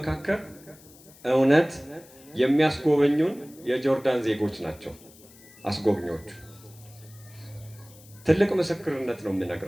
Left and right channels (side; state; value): left; noise; hiss, 24 dB below the sound